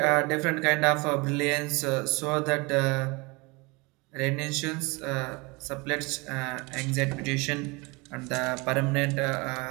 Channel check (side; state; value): left; quieter; 26.7 dB